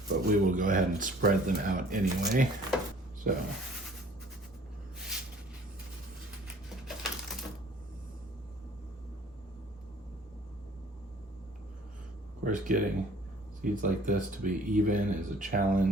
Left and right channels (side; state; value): both; normal; correlation 0.53